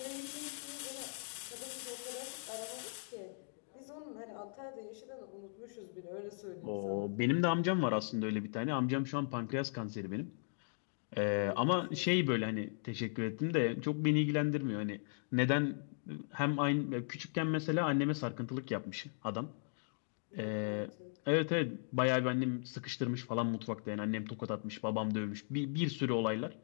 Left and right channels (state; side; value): silent; right; digital silence